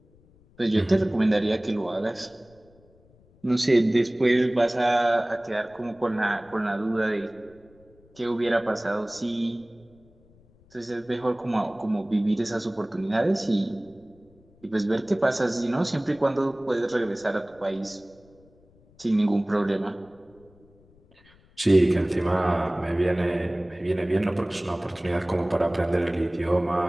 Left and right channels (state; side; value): noise; left; rumble, 29 dB below the sound